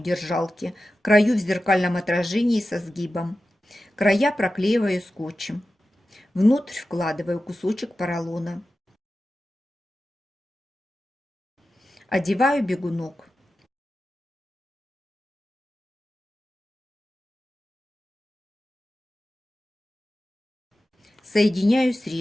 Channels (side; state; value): both; normal; correlation 0.94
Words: краю в зеркальном отражении со сгибом. Края проклеиваю скотчем. Внутрь вкладываю кусочек поролона. Одеваю бегунок. Соединяю